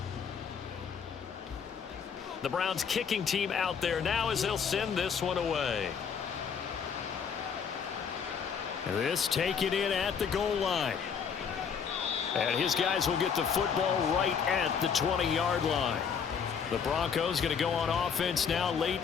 The Browns kicking team out there now as they'll send this one away. This taken in at the goal line. And his guys will get the football right at the 20-yard line. The Broncos going to go on offense now late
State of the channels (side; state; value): right; quieter; 6.8 dB